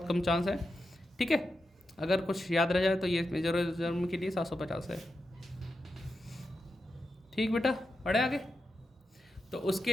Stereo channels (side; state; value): both; normal; correlation 0.88